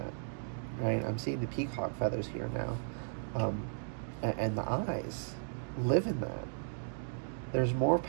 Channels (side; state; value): left; silent; digital silence